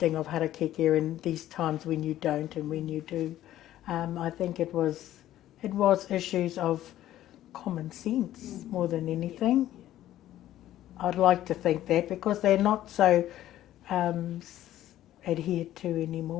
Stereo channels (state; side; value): quieter; right; 13.3 dB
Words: of harakeke in these times when you don't and when you do. I think it was issues of common sense more than anything. I'd like to think that, because they're not so adhered to